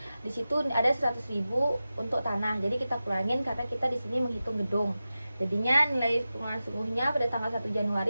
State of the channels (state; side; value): inverted; both; correlation -0.94